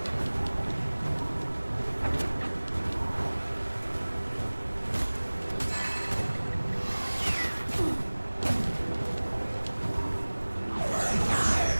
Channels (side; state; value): both; inverted; correlation -1.00